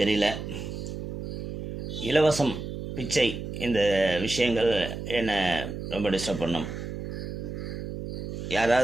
தெரியல. இலவசம், பிச்சை, இந்த விஷயங்கள் என்னை ரொம்ப டிஸ்டர்ப் பண்ணும்.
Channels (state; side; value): noise; right; hum, 7 dB below the sound